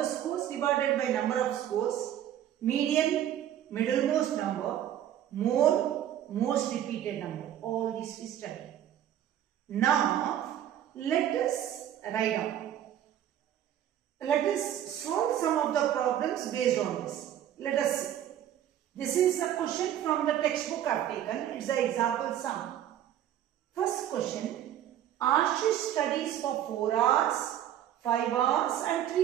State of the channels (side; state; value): left; quieter; 11.1 dB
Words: scores divided by number of scores. Median, middlemost number. Mode, most repeated number. All this we study. Now, let us write down. Let us solve some of the problems based on this. Let us see. This is a question from the textbook I have taken. It's the example sum. First question. Ashish studies for 4 hours, 5 hours and